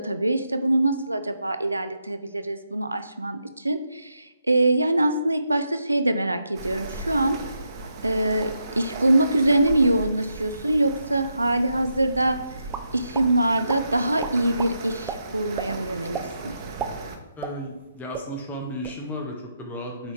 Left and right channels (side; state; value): both; inverted; correlation -0.82